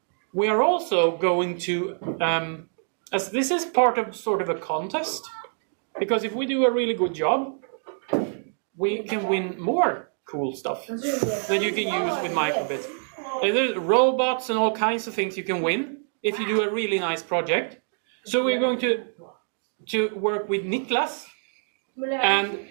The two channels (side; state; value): left; silent; 61 dB below the other